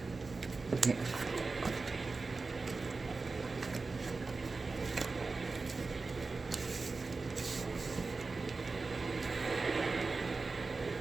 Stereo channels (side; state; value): left; quieter; 4.0 dB